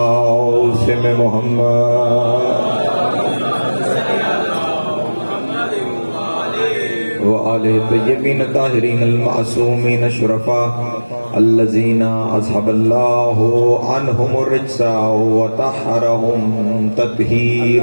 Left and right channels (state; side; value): inverted; both; correlation -1.00